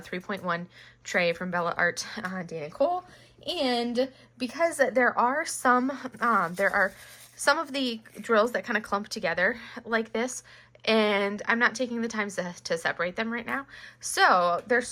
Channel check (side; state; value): both; identical; correlation 1.00